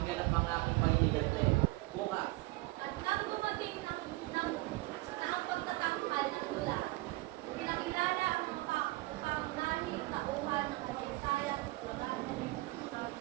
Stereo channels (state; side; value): quieter; left; 21.4 dB